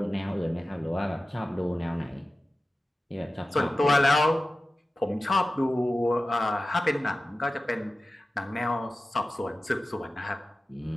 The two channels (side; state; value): both; normal; correlation 0.95